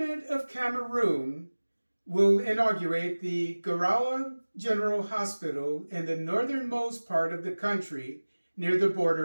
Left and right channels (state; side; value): inverted; both; correlation -1.00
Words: of Cameroon will inaugurate the Garawa General Hospital in the northernmost part of the country near the